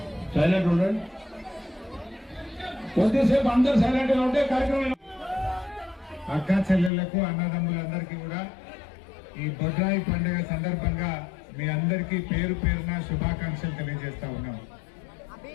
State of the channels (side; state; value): right; drops out; at 6.9 s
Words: సైలెంట్ ఉండండి, కొద్దిసేపు అందరు సైలెంట్ గా ఉంటే కార్యక్రమం. అక్క చెల్లెళ్లకు అన్నదమ్ములందరికీ కూడా ఈ బొడ్రాయి పండుగ సందర్భంగా మీ అందరికీ పేరు పేరున శుభాకాంక్షలు తెలియజేస్తా ఉన్నాం.